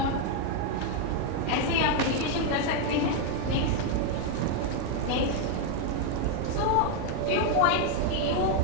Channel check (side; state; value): both; different; correlation 0.01